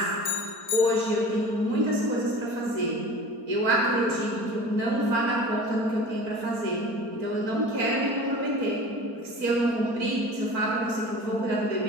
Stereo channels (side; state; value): left; late; 4.4 ms